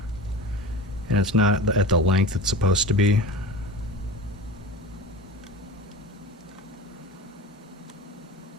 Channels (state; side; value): normal; both; correlation 0.32